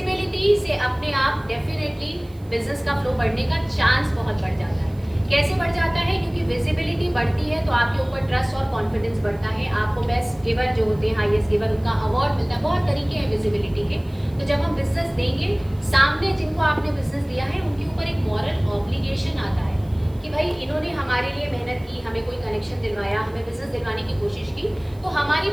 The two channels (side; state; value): right; noise; hiss, 29 dB below the sound